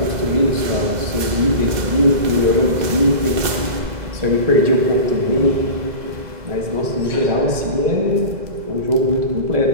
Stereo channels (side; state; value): left; late; 2.0 ms